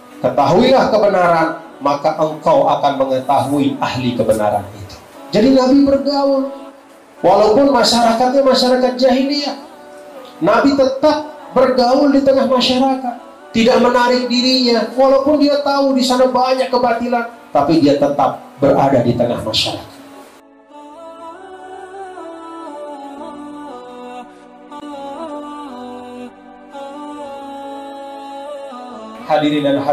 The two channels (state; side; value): identical; both; correlation 1.00